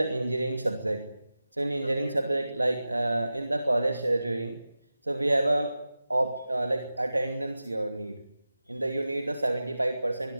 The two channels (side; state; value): both; inverted; correlation -0.94